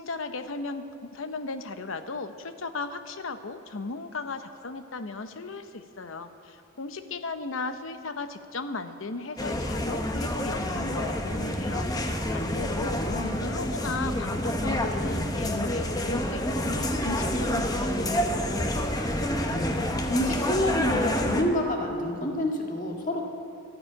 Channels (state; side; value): normal; both; correlation 0.46